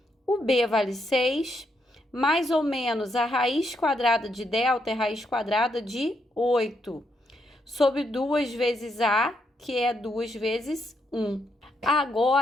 O B vale 6, mais ou menos a raiz quadrada de delta é raiz quadrada de 8, sobre 2 vezes A, que é 2 vezes 1.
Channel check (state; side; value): normal; both; correlation 0.78